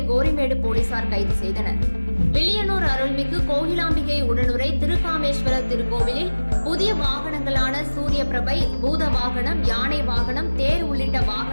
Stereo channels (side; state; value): both; inverted; correlation -1.00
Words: கோரிமேடு போலீசார் கைது செய்தனர். வில்லியனூர் அருள்மிகு கோகிலாம்பிகை உடனுரை திருக்காமேஸ்வர திருக்கோவிலில் புதிய வாகனங்களான சூரிய பிரபை, பூத வாகனம், யானை வாகனம், தேர் உள்ளிட்ட